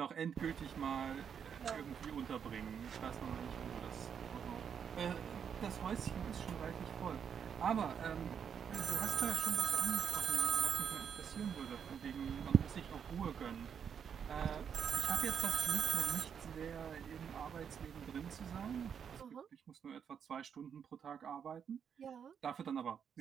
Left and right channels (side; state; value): left; quieter; 7.6 dB